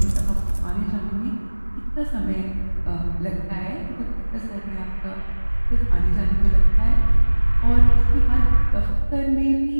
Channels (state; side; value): inverted; both; correlation -1.00